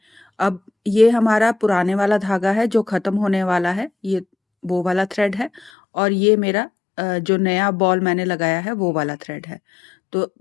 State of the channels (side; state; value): right; drops out; at 5.7 s